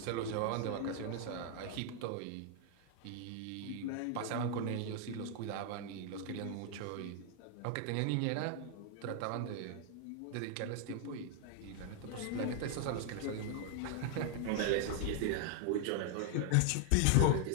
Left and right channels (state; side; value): different; both; correlation 0.00